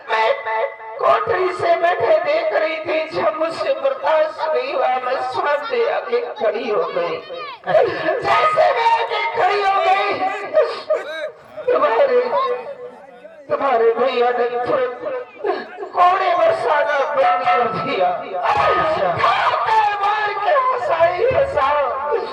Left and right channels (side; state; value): both; identical; correlation 1.00